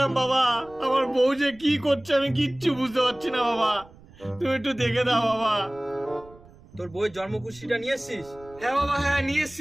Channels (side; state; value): right; noise; rumble, 23 dB below the sound